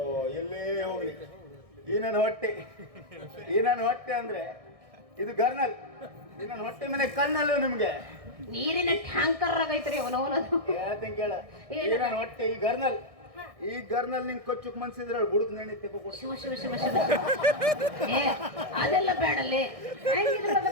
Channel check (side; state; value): left; late; 1.6 ms